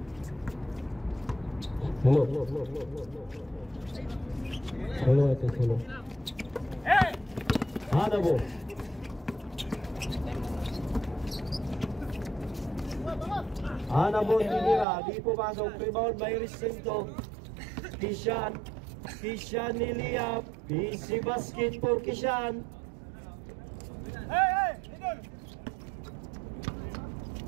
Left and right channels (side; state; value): left; drops out; at 14.9 s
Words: Hello. Hanabo. Hanabo tinira, di pumasok, rebound by Recinto. Kishan niliap, busy basket for Kishan.